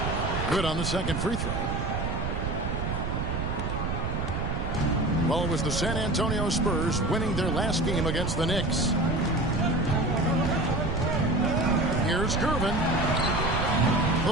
Good on the second free throw. Well, it was the San Antonio Spurs winning their last game against the Knicks. Here's Gervin.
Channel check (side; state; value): right; noise; rumble, 2 dB below the sound